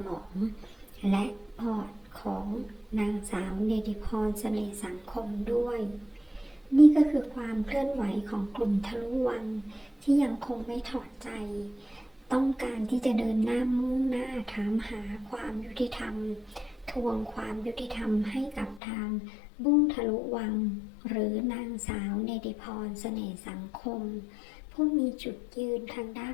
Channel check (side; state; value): right; drops out; at 18.8 s